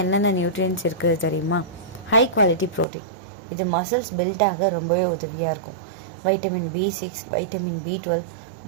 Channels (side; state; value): left; drops out; at 2.9 s